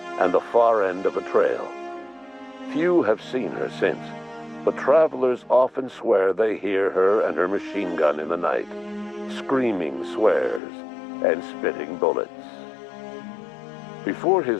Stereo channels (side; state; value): right; drops out; at 10.6 s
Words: and the far end of a trail. Few have seen her since, but travelers often swear they hear her and her machine gun in the night, screaming swears and spitting bullets. Before